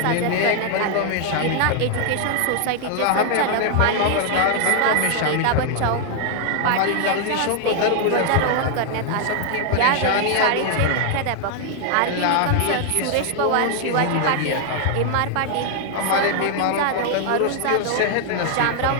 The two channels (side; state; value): both; different; correlation 0.00